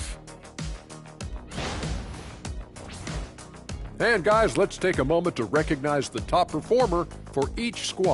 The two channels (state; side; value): identical; both; correlation 1.00